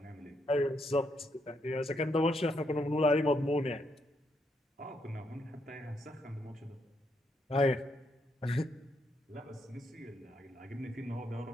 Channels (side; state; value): both; normal; correlation 0.77